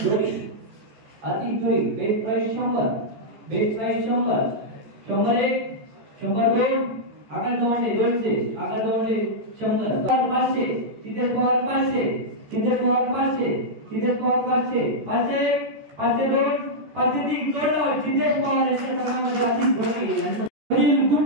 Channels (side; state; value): left; late; 14 ms